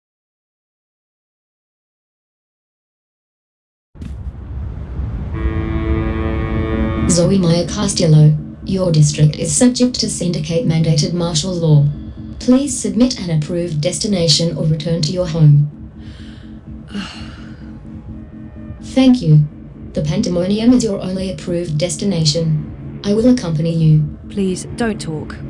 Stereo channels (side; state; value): both; identical; correlation 1.00